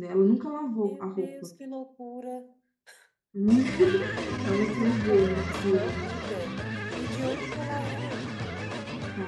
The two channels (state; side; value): identical; both; correlation 1.00